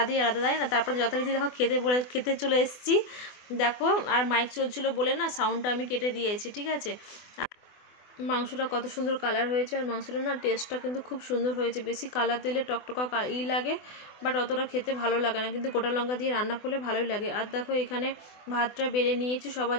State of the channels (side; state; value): right; late; 24 ms